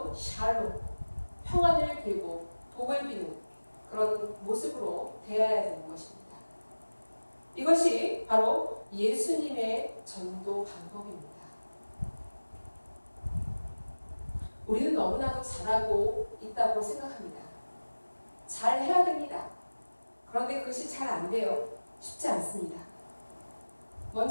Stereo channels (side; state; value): both; inverted; correlation -1.00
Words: 샬롬, 평안을 빌고 복을 비는 그런 모습으로 대해야 되는 것입니다. 이것이 바로 예수님의 전도 방법입니다. 우리는 너무나도 잘하고 있다고 생각합니다. 잘 해야 됩니다. 그런데 그것이 잘 안 돼요. 쉽지 않습니다.